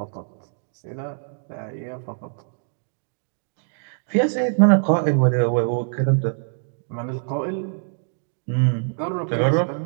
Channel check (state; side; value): silent; left; digital silence